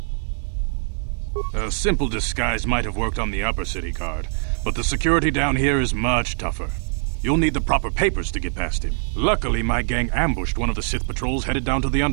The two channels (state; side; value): silent; left; 63 dB below the other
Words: A simple disguise might have worked on the Upper City guard, but the security down here is much tougher. You'll need the proper papers to get past him. Luckily, my gang ambushed one of the Sith patrols headed down to the